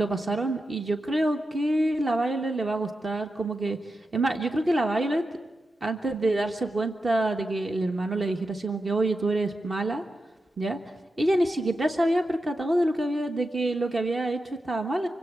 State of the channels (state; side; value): normal; both; correlation 0.89